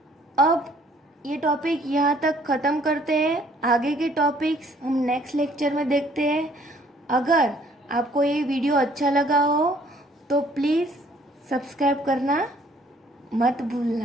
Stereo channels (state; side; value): normal; both; correlation 0.61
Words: अब ये टॉपिक यहाँ तक ख़त्म करते हैं, आगे के टॉपिक्स हम नेक्स्ट लेक्चर में देखते हैं। अगर आपको ये वीडियो अच्छा लगा हो तो प्लीज़ सब्सक्राइब करना मत